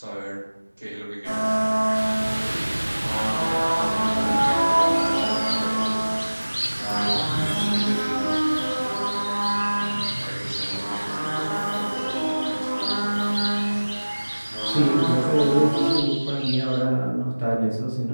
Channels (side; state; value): both; inverted; correlation -1.00